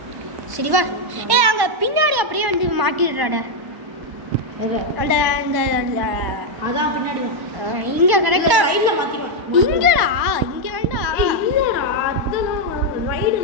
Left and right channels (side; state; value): left; late; 1.1 ms